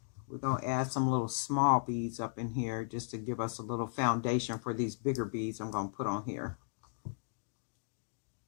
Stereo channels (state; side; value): silent; right; digital silence